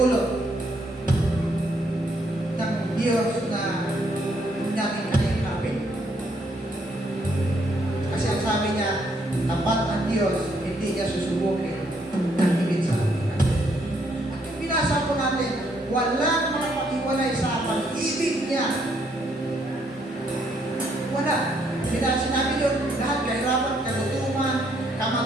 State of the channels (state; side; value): normal; both; correlation 0.71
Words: ng Diyos na hindi natin kayang. Kasi ang sabi niya, tapat ang Diyos, hindi niya susubukin ng higit sa atin. At yung binasa po natin, walang makapag-iwalay sa pag-ibig niya. Wala. Sinabi yun, lahat kahirapan, kalutuman,